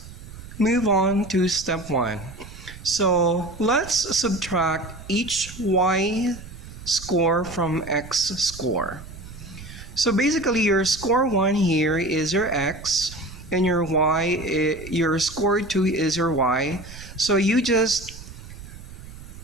move on to step 1. So let's subtract each y score from x score. So basically your score 1 here is your x and your your score 2 is your y. So you just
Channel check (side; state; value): right; noise; rumble, 15 dB below the sound